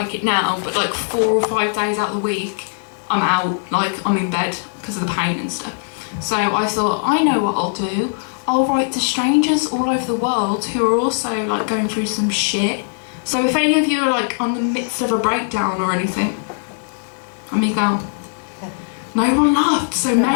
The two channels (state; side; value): silent; right; digital silence